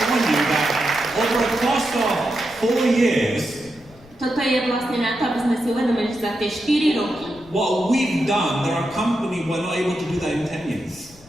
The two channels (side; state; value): left; noise; rumble, 25 dB below the sound